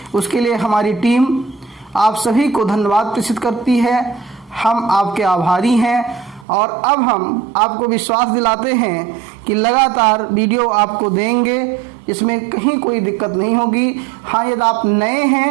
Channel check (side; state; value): left; drops out; at 6.5 s